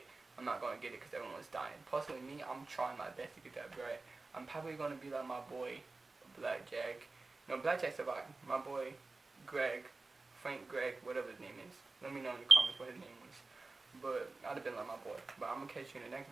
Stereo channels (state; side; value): quieter; left; 3.6 dB